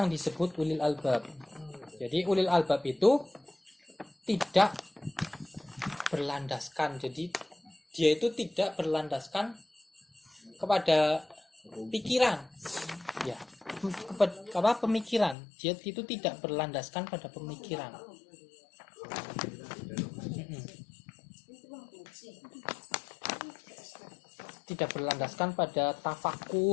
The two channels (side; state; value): right; drops out; at 15.4 s